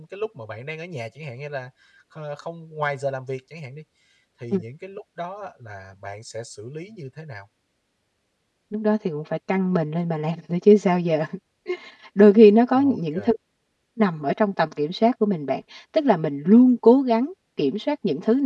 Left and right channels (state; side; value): identical; both; correlation 1.00